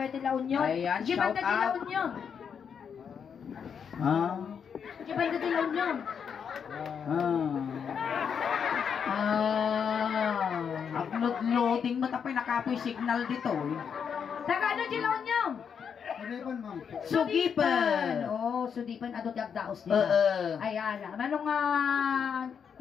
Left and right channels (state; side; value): quieter; right; 7.1 dB